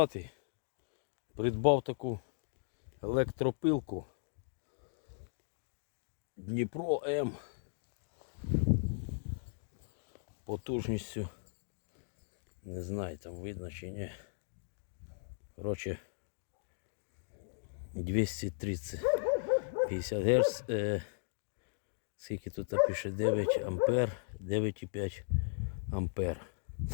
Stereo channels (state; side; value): silent; right; digital silence